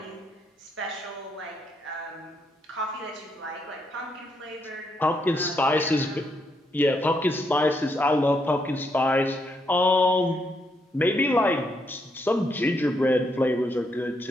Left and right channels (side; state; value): both; normal; correlation 0.77